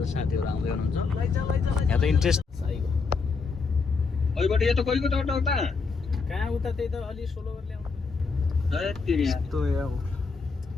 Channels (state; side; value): quieter; right; 4.7 dB